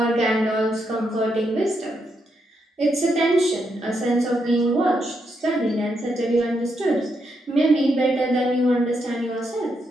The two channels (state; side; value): normal; both; correlation 0.80